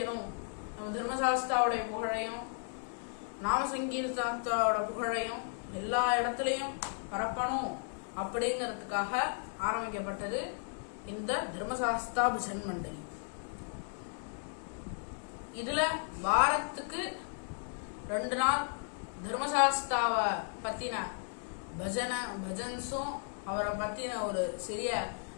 நம்ம தர்மசாஸ்தாவுடைய புகழையும் நாம சங்கீர்த்தனத்தோட புகழையும் எல்லா இடத்துலையும் பரப்பணும் அப்படிங்கிறதுக்காக ஆரம்பிக்கப்பட்டது இந்த தர்மசாஸ்தா பஜன் மண்டலி. இதுல வாரத்துக்கு 2 நாள் தர்மசாஸ்தாவை பத்தின பஜன்ஸும் அவரை பத்தின ஒரு சிறிய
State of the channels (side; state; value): right; silent; 55 dB below the other